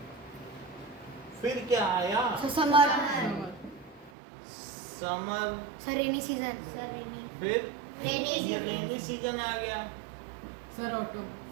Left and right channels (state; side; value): drops out; left; at 4.1 s